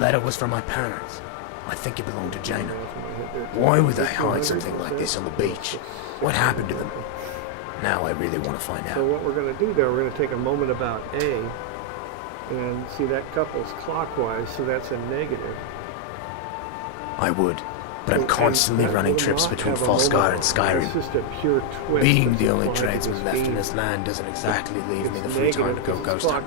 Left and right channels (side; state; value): both; different; correlation -0.01